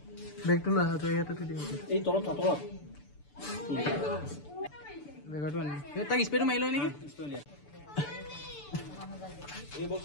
বেগটো লৈ আহা ইয়াতে থৈ দিম এই তলত বেগটো আনি তাক স্প্ৰেটো মাৰি লয় নেকি এই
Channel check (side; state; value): right; late; 6.9 ms